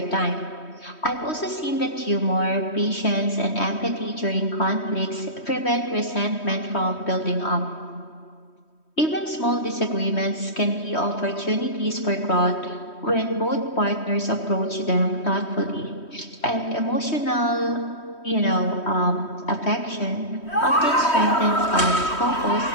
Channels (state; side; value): late; right; 3.1 ms